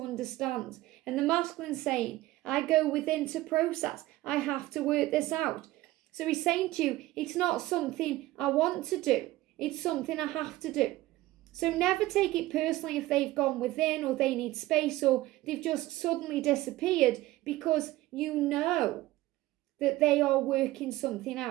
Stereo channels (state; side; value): quieter; left; 17.3 dB